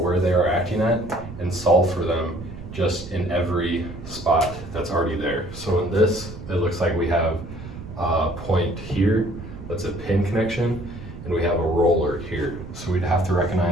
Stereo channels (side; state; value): right; noise; rumble, 13 dB below the sound